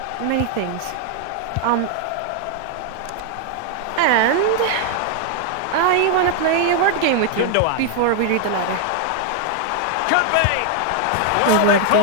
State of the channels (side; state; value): both; different; correlation 0.00